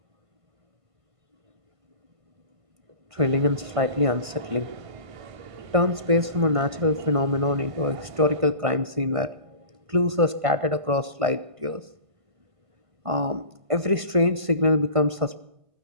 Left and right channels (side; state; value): left; late; 1.5 ms